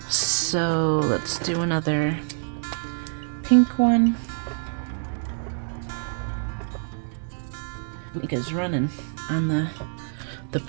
So let's do another pink one. Mika's running on the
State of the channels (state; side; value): silent; left; digital silence